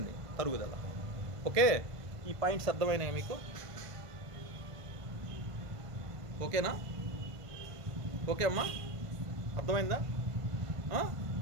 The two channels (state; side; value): late; left; 1.5 ms